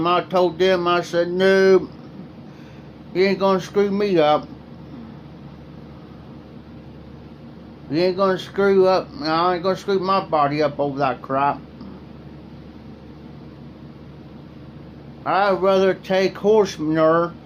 I told them, I said, no, you ain't gonna screw me up. You ain't gonna screw up. I ain't gonna screw my body up over that crap. I'd rather take horse manure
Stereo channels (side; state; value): both; identical; correlation 1.00